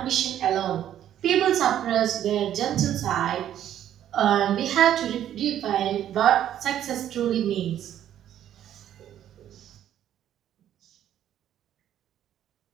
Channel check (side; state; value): left; quieter; 11.0 dB